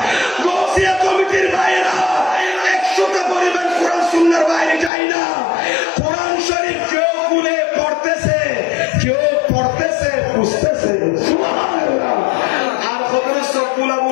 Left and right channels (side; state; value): right; drops out; at 4.9 s